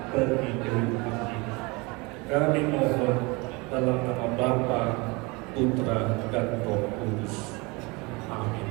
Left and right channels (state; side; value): quieter; left; 26.4 dB